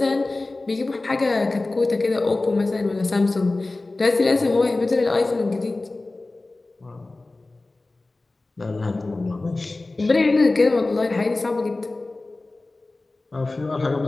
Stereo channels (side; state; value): right; quieter; 3.1 dB